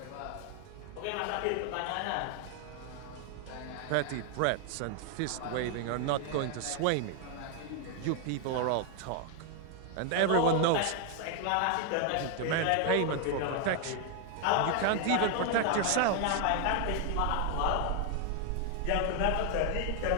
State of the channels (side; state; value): both; different; correlation 0.00